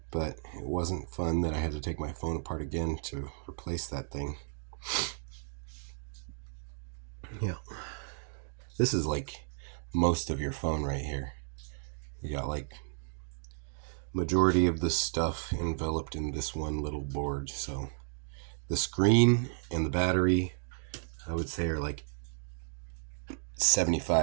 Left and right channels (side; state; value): left; silent; digital silence